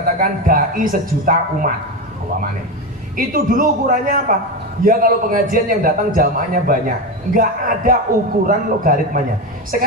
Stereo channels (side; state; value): both; normal; correlation 0.16